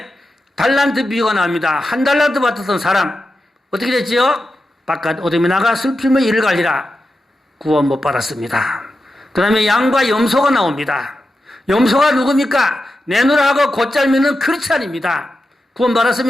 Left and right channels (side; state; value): both; normal; correlation 0.90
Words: 달란트 비유가 나옵니다. 한 달란트 받았던 사람 어떻게 됐지요? 바깥 어둠에 나가 슬픔의 이를 갈리라. 구원 못 받았습니다. 그 다음에 양과 염소가 나옵니다. 염소가 누굽니까? 내놓으라고 곧잘 믿는 크리스찬입니다. 구원